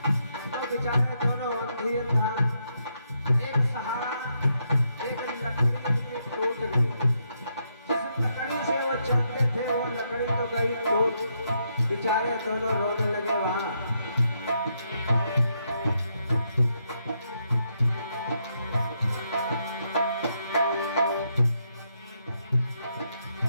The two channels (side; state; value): both; inverted; correlation -0.78